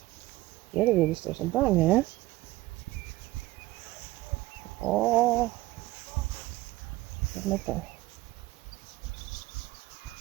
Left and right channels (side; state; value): left; quieter; 18.2 dB